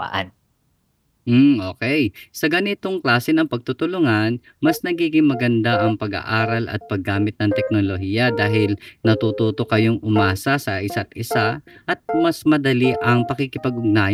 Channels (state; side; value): identical; both; correlation 1.00